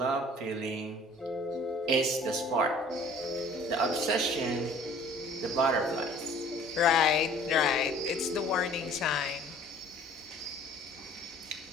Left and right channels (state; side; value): normal; both; correlation 0.51